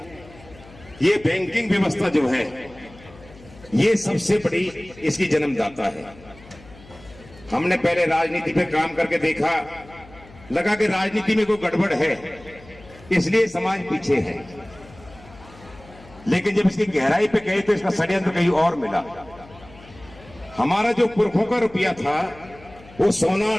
ये बैंकिंग व्यवस्था जो है ये सबसे बड़ी इसकी जन्मदाता है। हमने पहले राजनीति पे काम करके देखा, लगा कि राजनीति में कोई गड़बड़ है इसलिए समाज पीछे है, लेकिन जब इसकी गहराई पे गए तो इसका षड्यंत्र कहीं और मिला। हमारा जो पुरखों का रुपया था वो सोना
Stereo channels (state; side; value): noise; left; hum, 22 dB below the sound